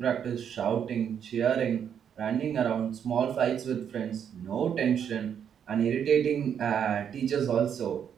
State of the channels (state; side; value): quieter; left; 8.4 dB